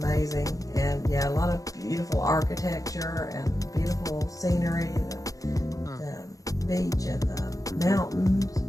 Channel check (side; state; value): right; late; 0.17 ms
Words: And yeah, a lot of beautiful architecture and beautiful scenery, the beach and the mountains.